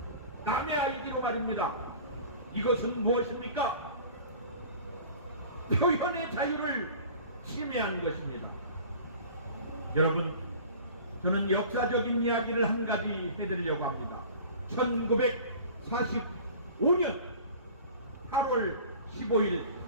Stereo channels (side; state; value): both; inverted; correlation -0.42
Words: 남의 아이디로 말입니다. 이것은 무엇입니까? 표현의 자유를 침해한 것입니다. 여러분, 저는 역사적인 이야기를 한 가지 해드리려고 합니다. 1945년 8월 15일